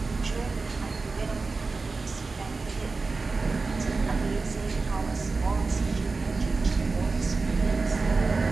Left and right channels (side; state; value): left; quieter; 4.0 dB